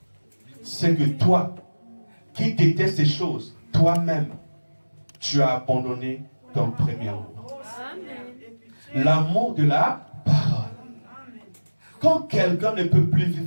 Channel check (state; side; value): inverted; both; correlation -1.00